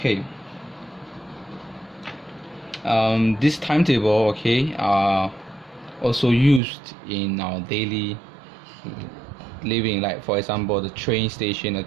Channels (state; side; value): drops out; left; at 6.6 s